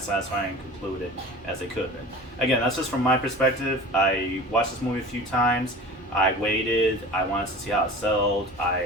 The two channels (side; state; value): both; normal; correlation 0.38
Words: satisfying and concluded as they could have been. Again, that's just from my perspective. I watched this movie a few times. I waited. I wanted to see how it sold.